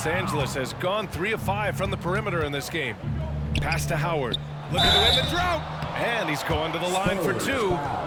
Angeles has gone 3 of 5 from the perimeter in this game. Pass to Howard. Looking to win the drought. And he's going to the line for 2.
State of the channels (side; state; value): both; identical; correlation 1.00